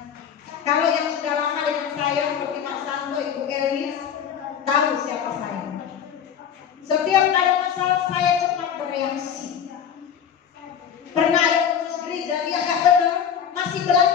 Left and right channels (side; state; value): right; quieter; 8.2 dB